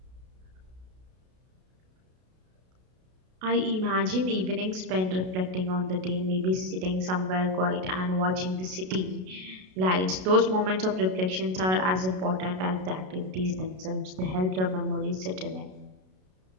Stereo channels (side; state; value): left; late; 32 ms